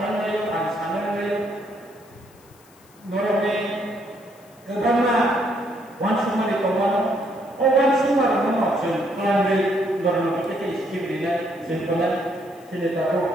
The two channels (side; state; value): left; noise; hiss, 28 dB below the sound